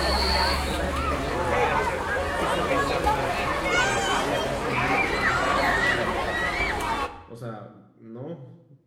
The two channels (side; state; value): both; identical; correlation 1.00